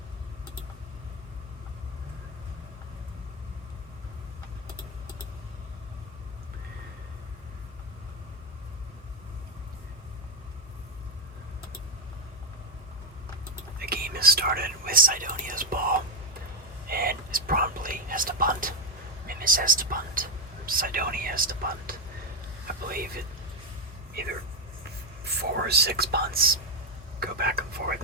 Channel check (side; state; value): both; normal; correlation 0.09